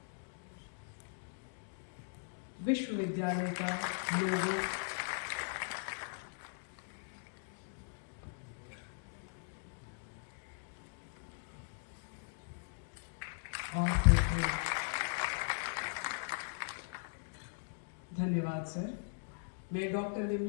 विश्वविद्यालय का लोगो और धन्यवाद सर। मैं डॉक्टर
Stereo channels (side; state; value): right; silent; digital silence